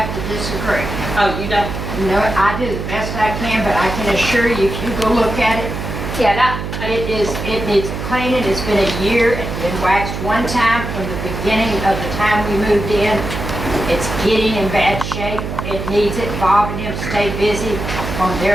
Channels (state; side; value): noise; right; hum, 5 dB below the sound